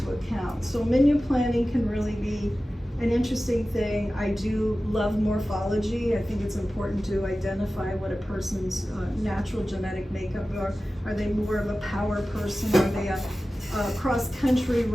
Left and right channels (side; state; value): both; normal; correlation 0.95